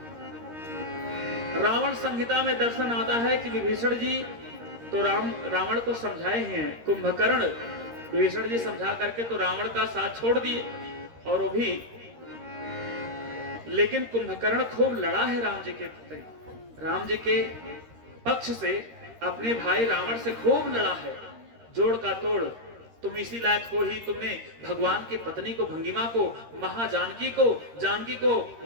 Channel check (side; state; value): left; late; 13 ms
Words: रावण संहिता में दर्शन आता है कि विभीषण जी तो रावण को समझाए हैं, कुंभकर्ण विभीषण जी समझा करके तो रावण का साथ छोड़ दिए, और वो भी, लेकिन कुंभकर्ण खूब लड़ा है राम जी के प्रति, राम जी के पक्ष से अपने भाई रावण से खूब लड़ा है, जोड़ का तोड़। तुम इसी लायक हो ही, तुमने भगवान की पत्नी को, भंगिमा को, महाजानकी को